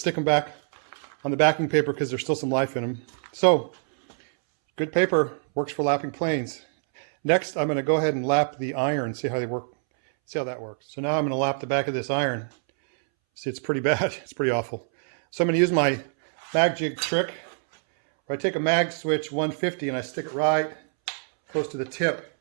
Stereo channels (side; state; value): left; silent; 62 dB below the other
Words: them back on the backing paper because there's still some life in them. So good paper, works for lapping planes. Next, I'm going to go ahead and lap the iron, see how they work, see how that works. So now I'm going to lap the back of this iron. See, it's pretty bad. It's pretty awful. So I'm going to use my mag jig trick, where I take a mag switch 150 and I stick it right close to the tip.